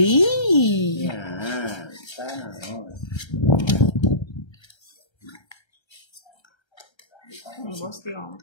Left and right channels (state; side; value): late; right; 1.3 ms